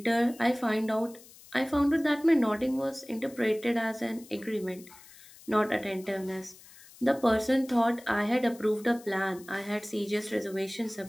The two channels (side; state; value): left; noise; hiss, 22 dB below the sound